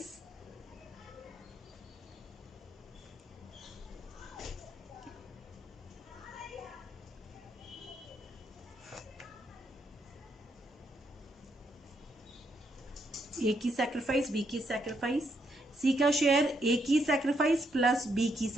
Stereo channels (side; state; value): both; normal; correlation 0.76